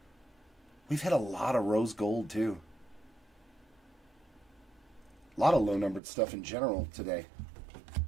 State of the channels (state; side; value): drops out; left; at 6.0 s